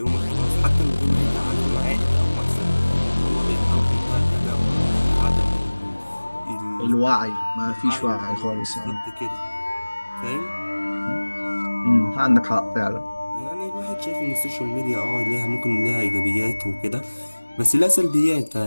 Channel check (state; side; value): inverted; both; correlation -1.00